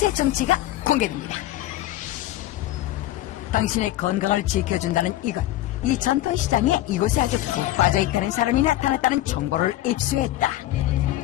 정체가 공개됩니다. 당신의 건강을 지켜준다는 이것. 이 전통시장에 이곳에 아주 푹 빠져있다는 사람이 나타났다는 정보를 입수했다.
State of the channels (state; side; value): quieter; right; 14.9 dB